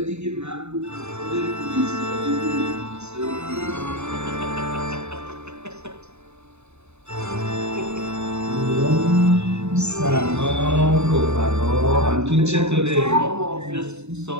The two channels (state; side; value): late; left; 0.81 ms